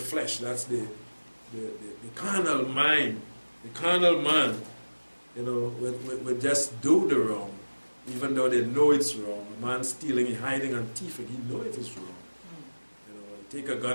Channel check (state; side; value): inverted; both; correlation -1.00